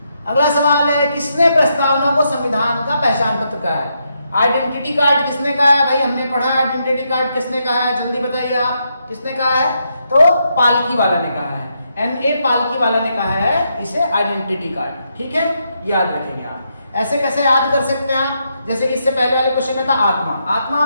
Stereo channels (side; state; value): both; inverted; correlation -0.80